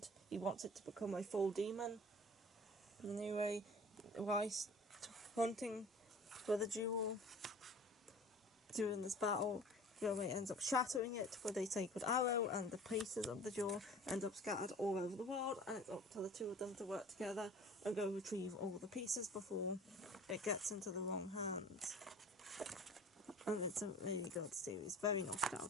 he wants it to become a full demon. Anyway, whilst hunting for the jewel during this battle, Kagome ends up shattering it with a sacred arrow, and the pieces of the jaw end up scattered all over the world, and it's up to the two of them to work together and go retrieve all the pieces before it gets into the wrong hands. And it's a really good series, very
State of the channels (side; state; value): both; normal; correlation 0.44